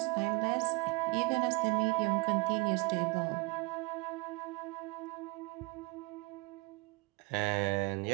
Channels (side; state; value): left; quieter; 26.3 dB